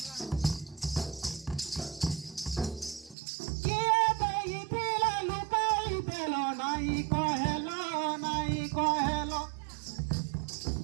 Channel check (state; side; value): drops out; left; at 3.2 s